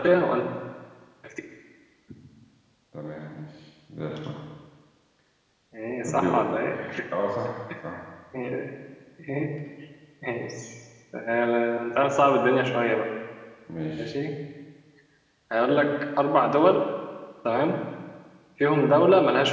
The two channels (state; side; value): identical; both; correlation 1.00